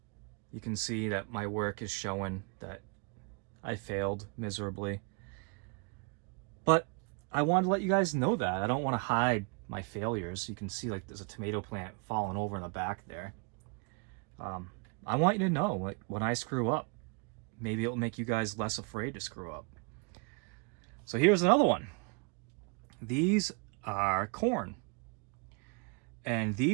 you can see that my work is showing that I failed miserably. But I wanted to let you guys know that. I don't want to hide my failures. You can see like there's a tomato plant falling over in the back there. I want you to know, like, when I screw up, maybe it'll make you guys less afraid to screw up. So here's another one. These are corn. And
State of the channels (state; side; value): quieter; left; 34.5 dB